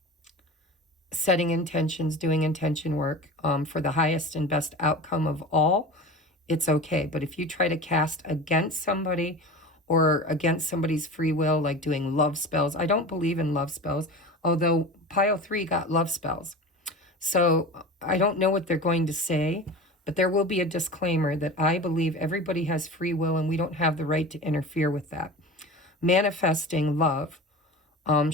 setting intentions, doing intention work for the highest and best outcome of all, it's okay. But if you try to cast against somebody or against somebody's free will, like doing love spells, I don't believe in love spells, although pile 3 got love spells. So I don't know what they're going to say, but there will be a disclaimer that I believe everybody has free will and we don't have the right to interfere with that. Manifesting love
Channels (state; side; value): normal; both; correlation 0.33